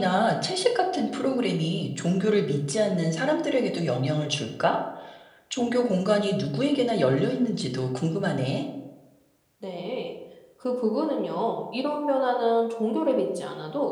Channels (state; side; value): identical; both; correlation 1.00